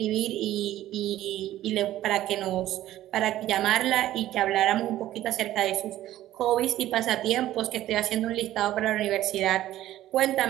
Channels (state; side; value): quieter; left; 13.9 dB